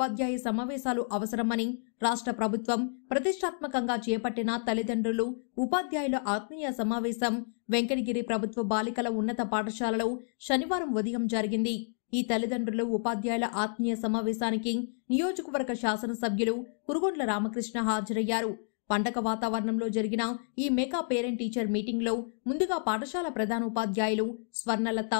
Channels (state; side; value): silent; right; digital silence